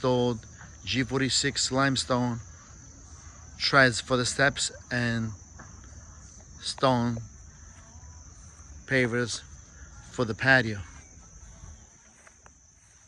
G46 limestone treads for the steps and stone pavers for the patio.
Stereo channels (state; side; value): identical; both; correlation 1.00